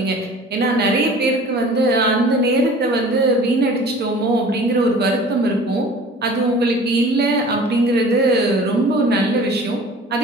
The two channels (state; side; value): normal; both; correlation 0.45